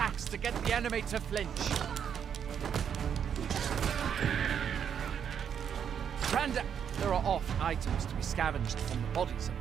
to get the enemy to flinch. There are oft items to be scavenged from the bodies of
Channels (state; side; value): quieter; left; 8.1 dB